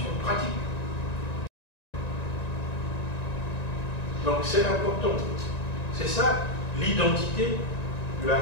pratique. Donc c'est important. C'est ça l'identité de la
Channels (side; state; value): right; late; 1.9 ms